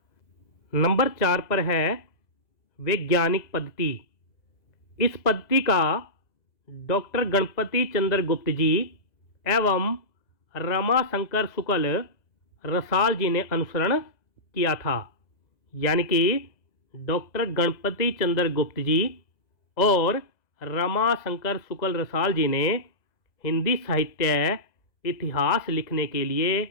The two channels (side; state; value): right; late; 2.0 ms